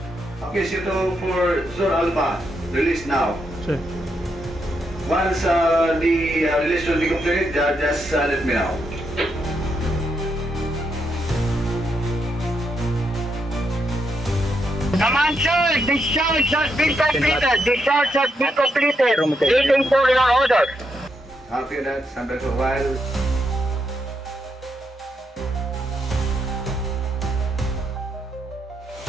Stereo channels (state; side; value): normal; both; correlation 0.80